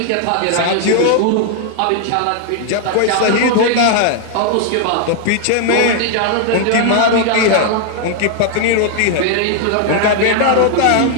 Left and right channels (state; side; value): different; both; correlation 0.00